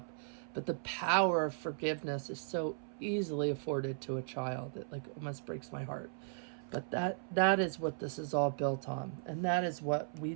But the power of forgiveness is so easily afforded to a child. It like almost breaks my heart. But that is what this is all built on. And that is what we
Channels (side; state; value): left; silent; 53 dB below the other